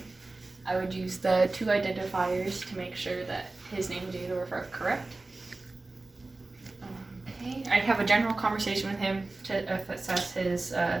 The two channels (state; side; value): quieter; left; 3.2 dB